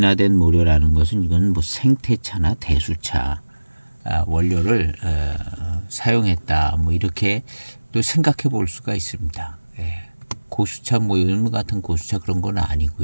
모료라는 것은 이건 뭐 생태차나 대수차 원료를 사용했다, 뭐 이렇게 또 생각해 볼 수가 있습니다. 고수차 뭐 이런 같은 고수차 그런 건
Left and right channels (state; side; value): inverted; both; correlation -1.00